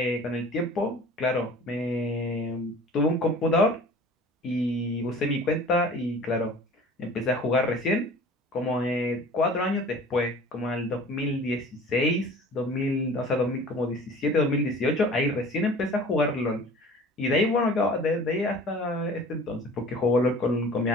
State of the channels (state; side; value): normal; both; correlation 0.44